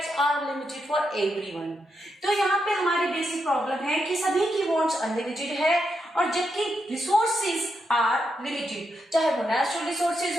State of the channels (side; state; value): both; normal; correlation 0.83